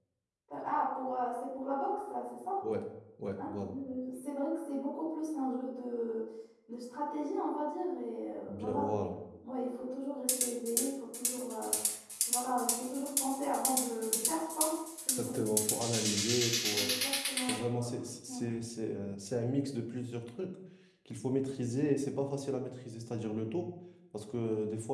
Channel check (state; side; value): identical; both; correlation 1.00